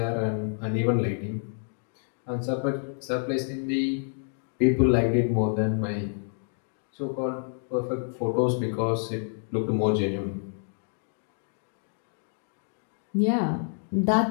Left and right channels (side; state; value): right; silent; 59 dB below the other